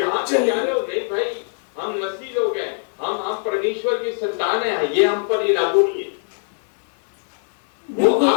पे जा रहे हो। नहीं भाई, हम मसीह लोग हैं, हम परमेश्वर की संतान है, ये हम पर ये लागू नहीं है। वो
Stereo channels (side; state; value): right; silent; digital silence